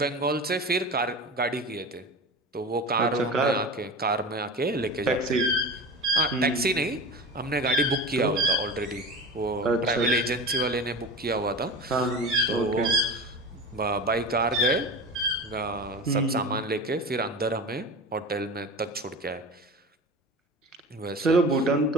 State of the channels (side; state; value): both; normal; correlation 0.30